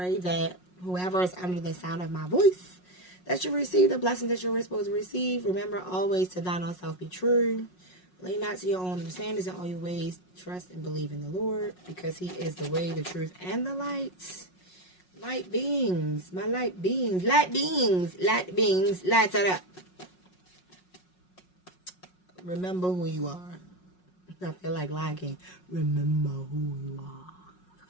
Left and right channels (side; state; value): right; late; 5.5 ms